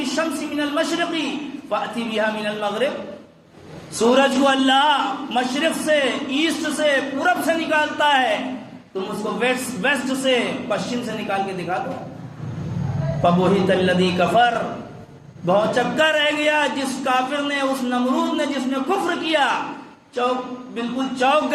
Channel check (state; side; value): identical; both; correlation 1.00